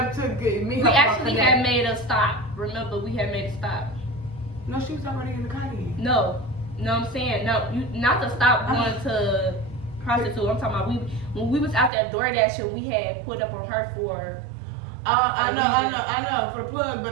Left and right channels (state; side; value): drops out; left; at 11.9 s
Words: to meet her. We actually had made a stop. Remember, we had made a stop. No, she was already in the car then. No, I'm saying no. You not to stop going to Prostitute. I'm talking about when we was out there DoorDashing, we had put up on her for. I know for the plug,